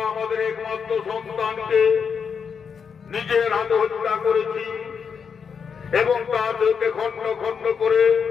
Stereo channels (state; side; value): quieter; right; 6.4 dB